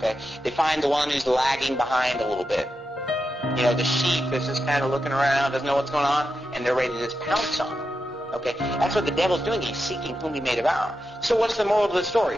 They find the one who's lagging behind a little bit. You know, the sheep is just kind of looking around, doesn't know what's going on, and they're ready to just pounce on them. Okay? That's what the devil's doing. He's seeking whom he may devour. So what's the moral of the story?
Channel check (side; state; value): both; normal; correlation 0.88